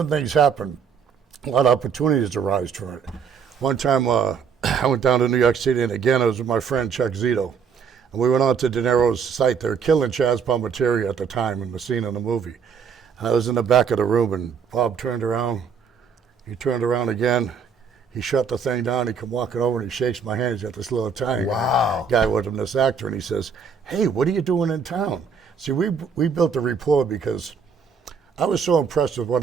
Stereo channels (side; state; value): left; quieter; 6.3 dB